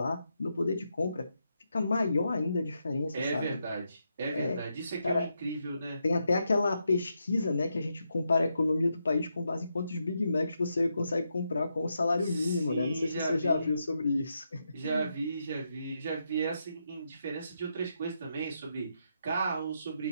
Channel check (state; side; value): inverted; both; correlation -0.82